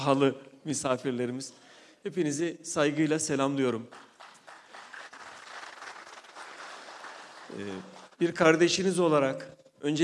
misafirlerimiz. Hepinizi saygıyla selamlıyorum. Bir kardeşiniz olarak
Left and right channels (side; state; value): both; identical; correlation 1.00